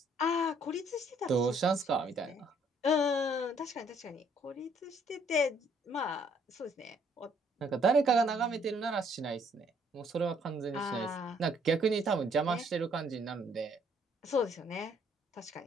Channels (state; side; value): normal; both; correlation 0.65